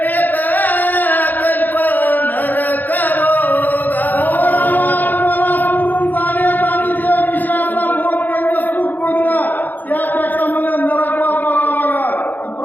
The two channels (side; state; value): right; late; 0.085 ms